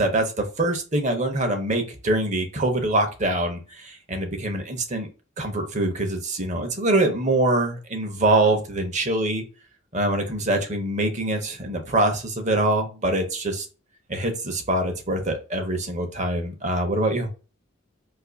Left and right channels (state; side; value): normal; both; correlation 0.18